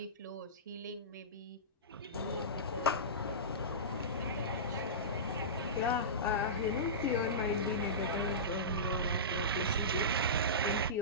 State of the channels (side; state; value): both; normal; correlation -0.20